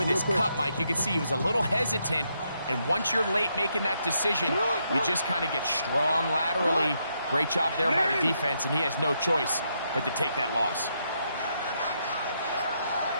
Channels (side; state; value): both; inverted; correlation -0.78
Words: his cut, Mike. You can see he was a little hesitant, and once you're late making that decision, you just kind of get strong laterally. Great job there by the defense, and he has no choice but to take that loss.